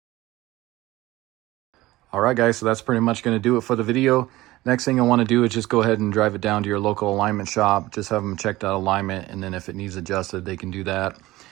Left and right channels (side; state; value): left; quieter; 18.0 dB